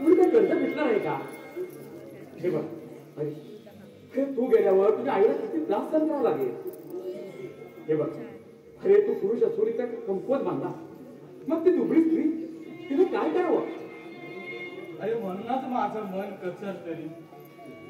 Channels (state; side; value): identical; both; correlation 1.00